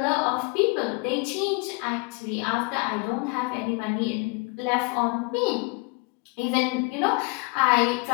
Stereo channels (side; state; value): right; quieter; 31.1 dB